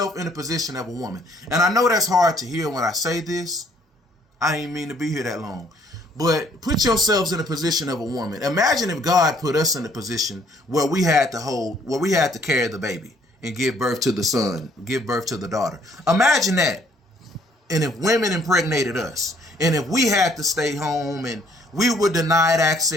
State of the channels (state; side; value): normal; both; correlation 0.63